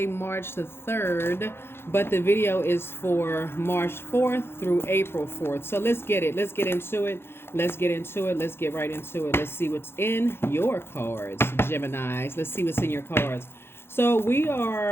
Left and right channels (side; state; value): right; late; 0.11 ms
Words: March the 3rd, but the video is for March 4th through April 4th. So let's get it. Let's get into it. Let's get into it. Let's get right into it. Let's see what's in your cards, Geminis. Let's see what's in your cards. So we